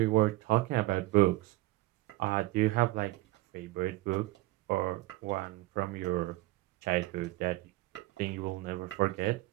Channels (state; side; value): quieter; left; 19.2 dB